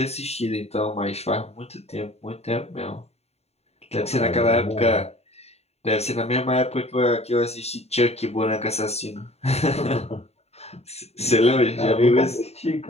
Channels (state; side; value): late; right; 0.30 ms